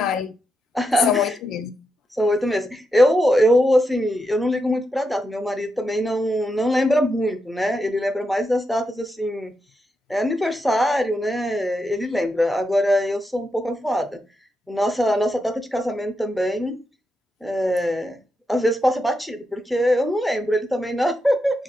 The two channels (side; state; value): both; normal; correlation 0.85